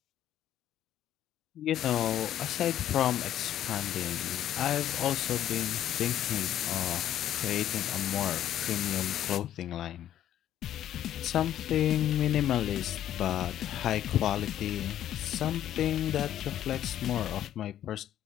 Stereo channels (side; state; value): right; quieter; 11.5 dB